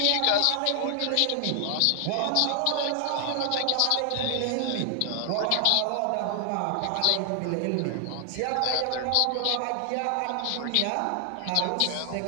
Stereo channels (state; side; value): different; both; correlation 0.00